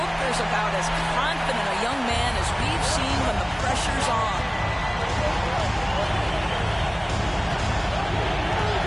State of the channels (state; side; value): identical; both; correlation 1.00